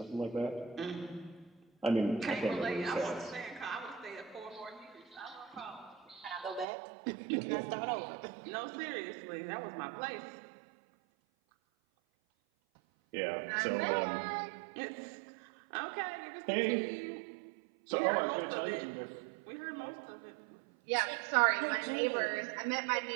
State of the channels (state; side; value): drops out; left; at 6.7 s